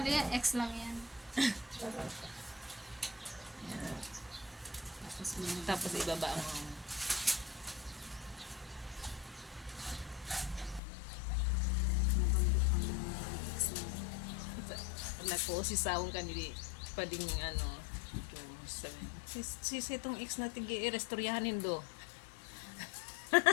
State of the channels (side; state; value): right; drops out; at 10.8 s